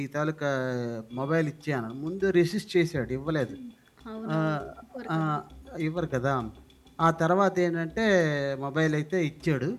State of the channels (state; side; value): identical; both; correlation 1.00